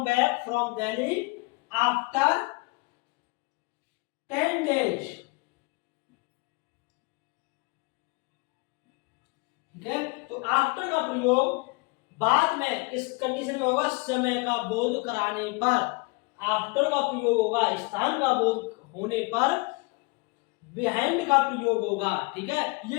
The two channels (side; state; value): right; quieter; 28.5 dB